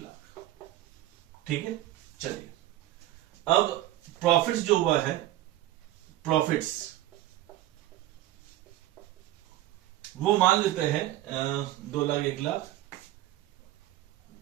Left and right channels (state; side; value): quieter; left; 15.0 dB